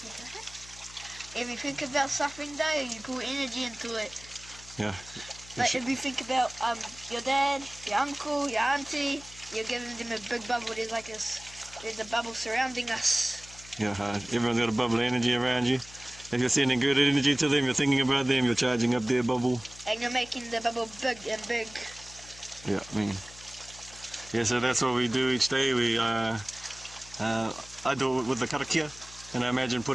If you think about something though, you pull energy into it. Yeah. Like if you think about your dad, your uncle, your auntie, you're giving them a big bubble. There's a bubble surrounding us. Yeah, everyone's got a bubble of energy around you. If you're sending good energy to them, you're thinking about them, you're charging up their bubble. And you're making the bubble big and big. Yeah, yeah, so that's what we do each day. I do it with the karakia, and I imagine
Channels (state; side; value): noise; left; hum, 19 dB below the sound